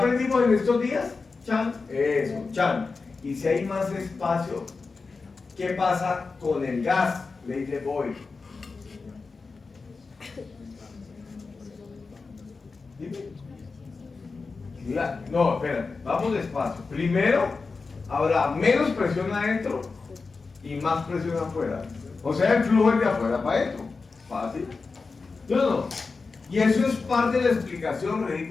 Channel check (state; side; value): quieter; right; 4.3 dB